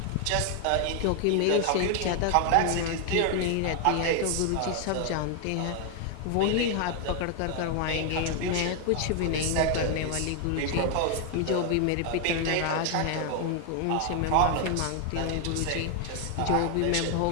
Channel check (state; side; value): different; both; correlation 0.00